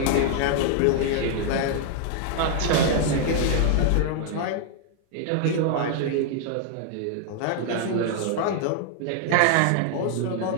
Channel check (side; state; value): both; different; correlation 0.00